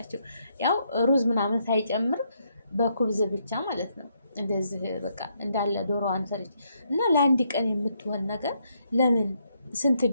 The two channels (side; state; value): both; inverted; correlation -0.76